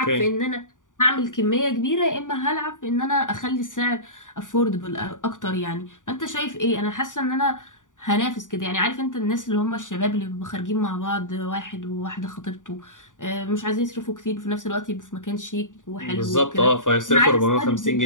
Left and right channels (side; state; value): right; late; 0.87 ms